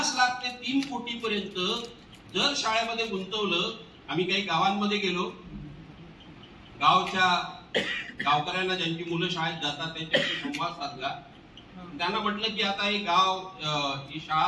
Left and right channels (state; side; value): identical; both; correlation 1.00